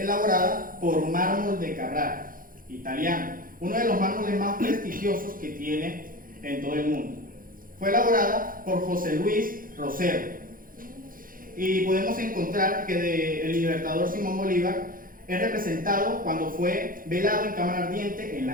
por mármol de Carrara, italiano, uno de los mármoles más prestigiosos que tiene en todo el mundo. Fue elaborada por José Luis Rosero y podemos encontrar que el Libertador Simón Bolívar es representado cuando fue velado en cámara ardiente en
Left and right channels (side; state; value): left; late; 0.41 ms